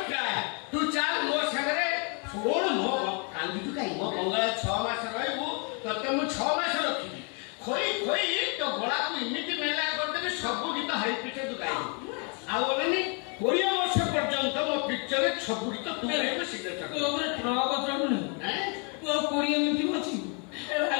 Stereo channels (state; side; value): quieter; right; 36.5 dB